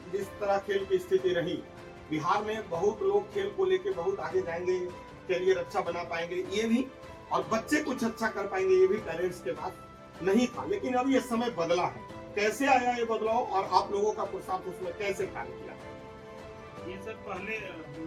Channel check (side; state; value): both; identical; correlation 1.00